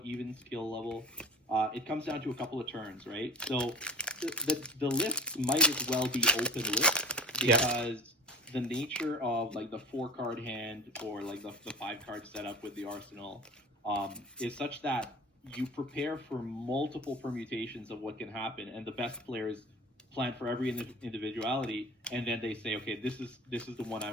even skill level, it comes down to a couple of turns, right? So the lists might as well be open lists because the nature of like the 4-card hand or like the 5-card setup with the arsenal is such that you prepare for multiple permutations of what can happen, and the best players plan for every individuality, and then they say, okay, this is the one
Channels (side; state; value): both; normal; correlation 0.37